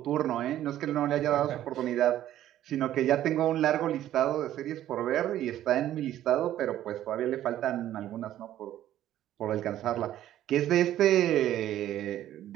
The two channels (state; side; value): quieter; left; 12.6 dB